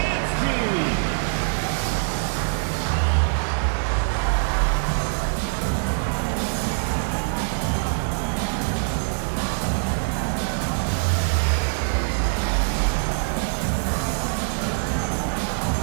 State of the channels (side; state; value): left; silent; digital silence